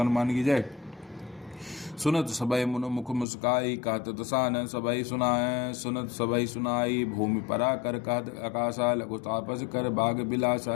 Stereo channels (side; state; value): right; drops out; at 3.2 s